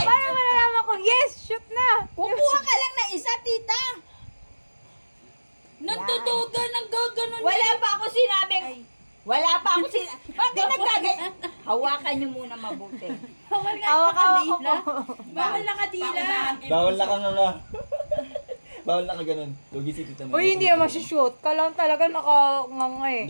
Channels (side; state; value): both; inverted; correlation -1.00